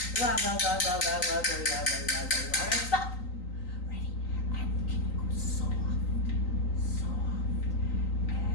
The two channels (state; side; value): late; right; 3.9 ms